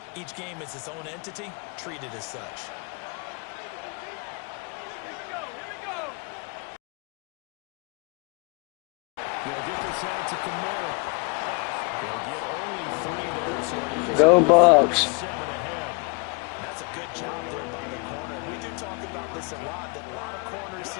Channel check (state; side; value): quieter; right; 32.6 dB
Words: Each game is its own entity, treated as such. They'll get this out to Kamara. They'll get only 3 there. So Go Bucks. 7 ahead. That's a good job there by the corner. We do talk about this a lot, that a lot of corners